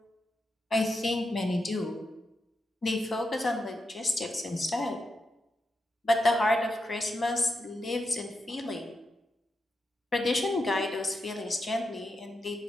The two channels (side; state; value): both; normal; correlation 0.86